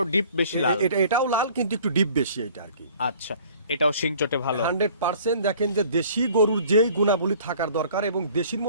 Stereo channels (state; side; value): inverted; both; correlation -0.52